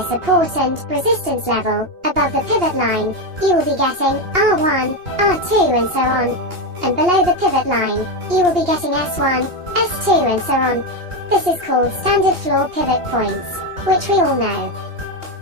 support and resistance level. Above the pivot line, you will be getting R1, R2 and so on. And below the pivot line, you will be getting S1, S2 and so on. This is called standard floor pivot points, which we all know.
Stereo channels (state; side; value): late; left; 2.8 ms